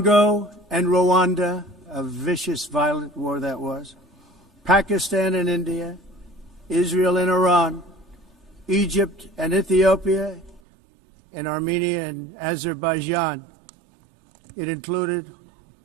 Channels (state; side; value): drops out; left; at 10.6 s